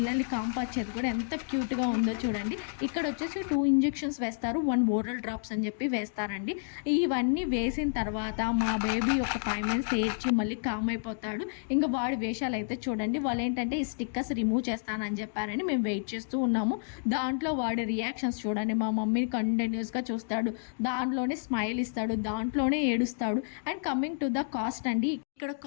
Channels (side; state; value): right; silent; digital silence